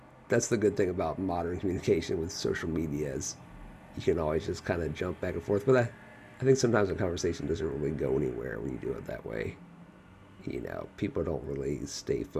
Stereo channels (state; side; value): identical; both; correlation 1.00